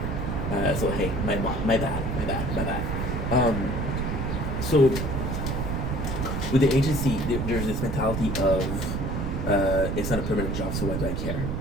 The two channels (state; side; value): noise; right; rumble, 1 dB below the sound